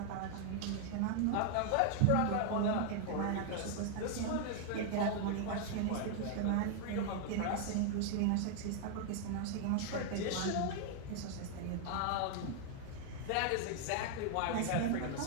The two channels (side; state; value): both; different; correlation 0.00